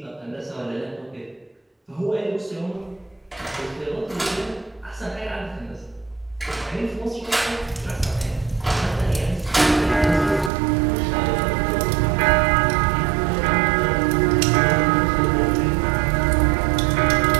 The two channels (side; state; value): left; drops out; at 10.5 s